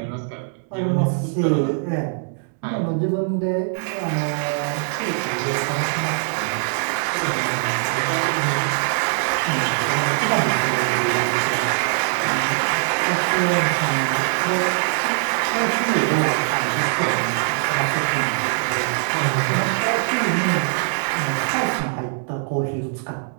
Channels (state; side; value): silent; left; 64 dB below the other